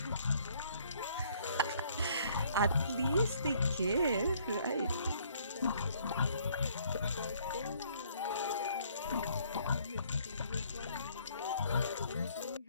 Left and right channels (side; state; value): both; inverted; correlation -0.62